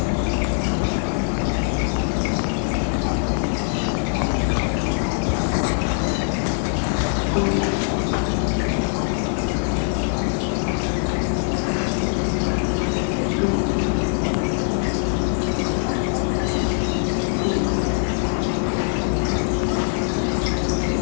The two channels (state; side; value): silent; right; digital silence